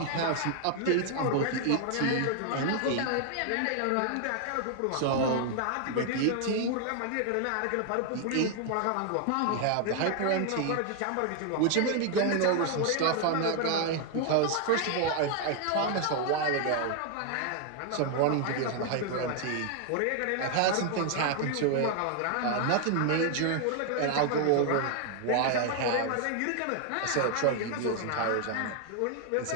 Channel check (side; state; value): both; different; correlation 0.00